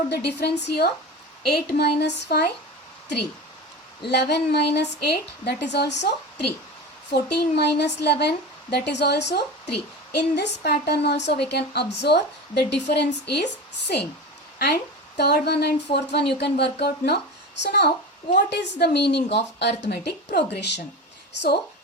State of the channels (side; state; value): both; normal; correlation 0.28